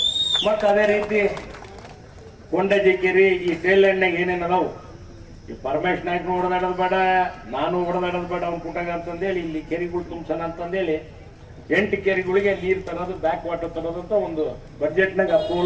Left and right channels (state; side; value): identical; both; correlation 1.00